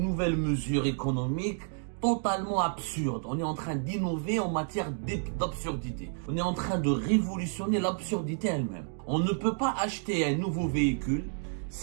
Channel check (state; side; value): silent; left; 58 dB below the other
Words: mesures économiques totalement absurdes. On est en train d'innover en matière d'absurdité. On est en train de révolutionner l'absurdité elle-même. On ne peut pas acheter un nouveau véhicule